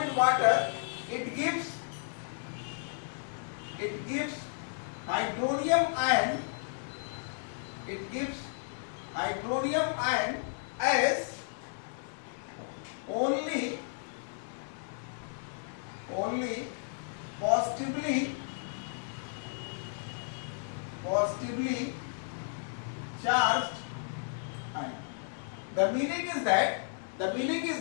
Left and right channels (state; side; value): silent; right; 55 dB below the other